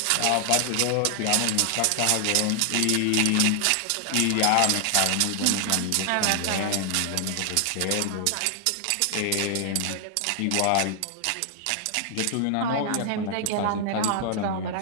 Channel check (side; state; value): both; different; correlation 0.00